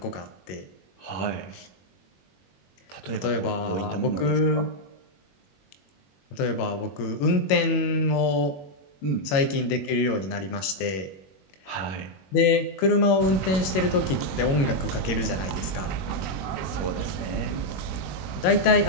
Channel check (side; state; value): right; late; 21 ms